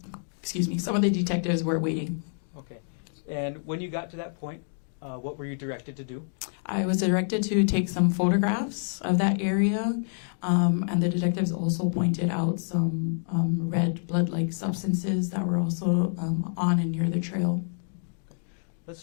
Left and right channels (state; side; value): silent; right; 60 dB below the other